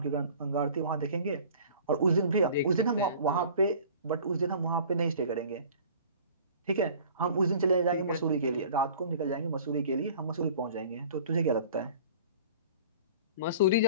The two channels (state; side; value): inverted; both; correlation -0.46